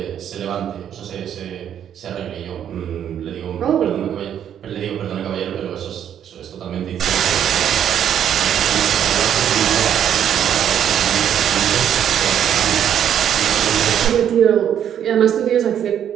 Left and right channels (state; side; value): quieter; left; 9.5 dB